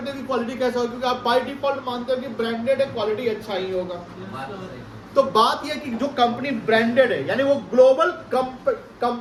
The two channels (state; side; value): identical; both; correlation 1.00